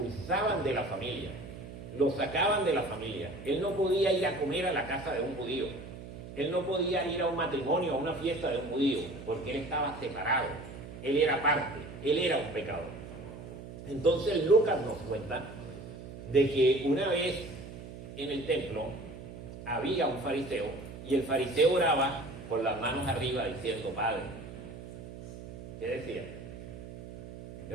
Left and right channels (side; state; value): right; noise; hum, 12 dB below the sound